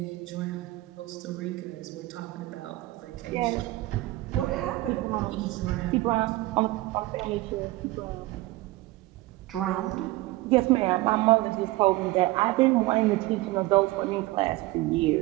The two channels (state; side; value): quieter; left; 19.3 dB